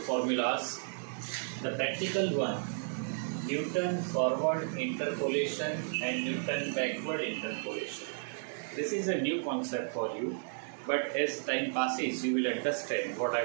The practical one, Newton forward interpolation and Newton backward interpolation. This is a new concept for you, but as time passes you will understand what I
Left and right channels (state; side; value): silent; left; digital silence